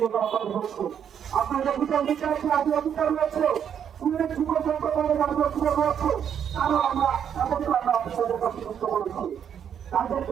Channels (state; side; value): quieter; left; 8.5 dB